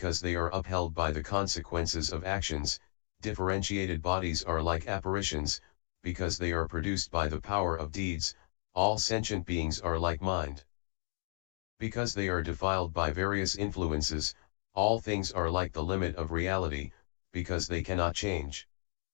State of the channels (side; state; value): right; silent; digital silence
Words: they are upheld by the consequences of actions, differentiated bodies are like apparitions, because they are produced by the power of deeds, all sentient beings are like mind. Because they are defiled by various influences, all things are like the limit of reality, because they cannot change.